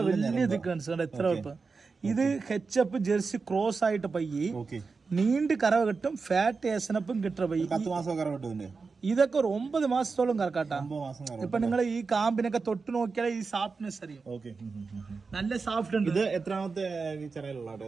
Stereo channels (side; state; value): left; quieter; 4.6 dB